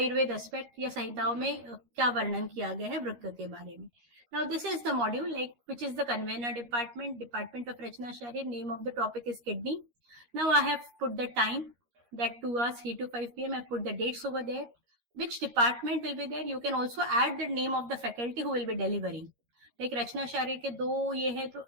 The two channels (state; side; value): late; left; 13 ms